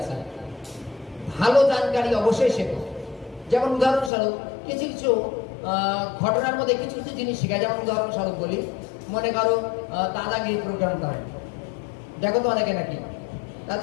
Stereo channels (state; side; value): drops out; right; at 4.1 s